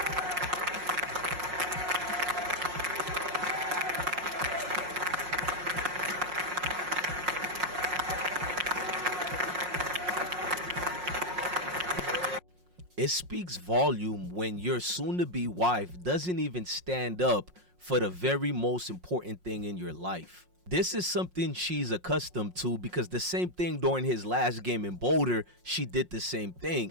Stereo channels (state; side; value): late; left; 5.5 ms